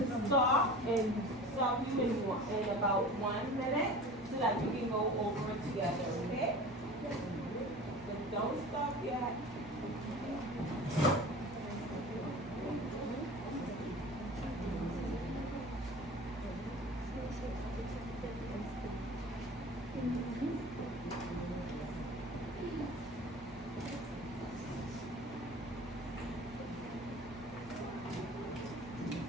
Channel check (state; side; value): normal; both; correlation 0.39